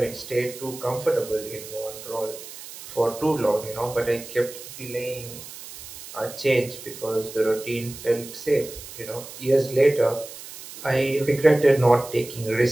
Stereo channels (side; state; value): right; noise; hiss, 14 dB below the sound